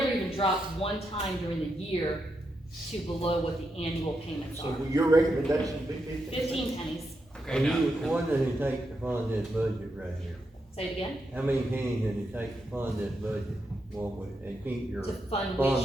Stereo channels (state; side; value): normal; both; correlation 0.84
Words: even dropped one time during the year to below what the annual payments So are. will your recommendation be 15 cents? 15 pennies. Okay, now, What does it take to fund this budget right here? Say it again. How many pennies does it take to fund this budget, and keep your To fund fund